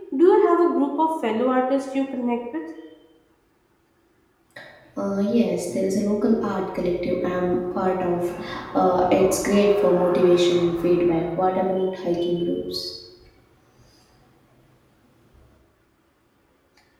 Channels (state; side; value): identical; both; correlation 1.00